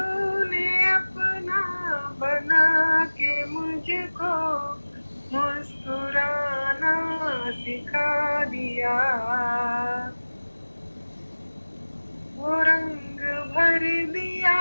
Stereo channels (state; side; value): inverted; both; correlation -1.00